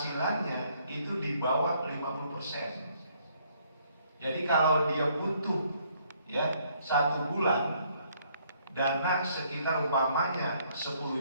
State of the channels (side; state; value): both; inverted; correlation -0.67